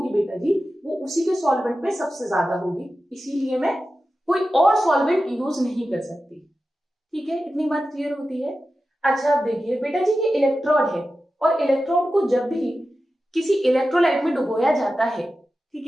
बेटा जी वो उसी के सॉल्वेंट में सबसे ज्यादा होगी, इसीलिए मैं कोई और सॉल्वेंट यूज नहीं कर सकती, ठीक है। इतनी बात क्लियर होती है। अच्छा अब देखिए बेटा जी ये इलेक्ट्रोड है, और इलेक्ट्रोड को जब भी किसी इलेक्ट्रोलाइट में डुबोया जाता है, ठीक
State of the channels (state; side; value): normal; both; correlation 0.93